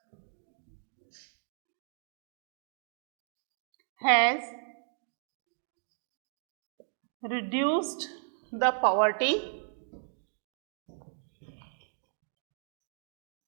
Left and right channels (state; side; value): silent; left; digital silence